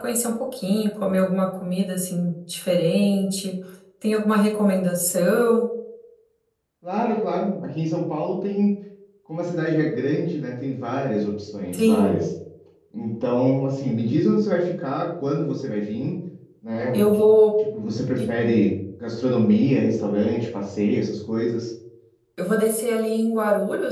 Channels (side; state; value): both; identical; correlation 1.00